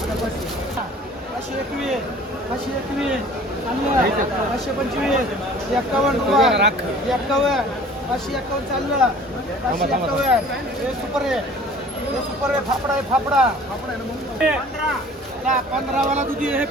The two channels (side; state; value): both; normal; correlation 0.48